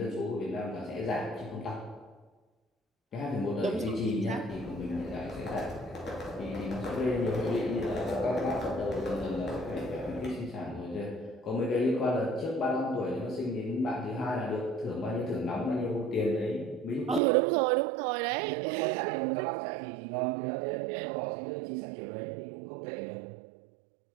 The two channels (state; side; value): drops out; left; at 17.2 s